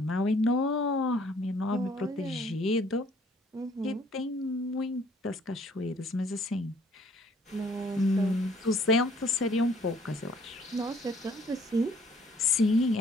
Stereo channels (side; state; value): both; normal; correlation 0.60